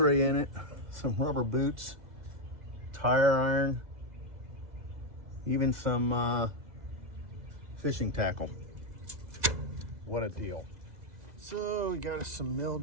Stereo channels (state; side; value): late; left; 2.0 ms